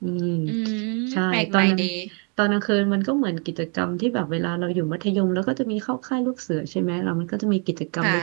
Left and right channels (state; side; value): quieter; left; 37.6 dB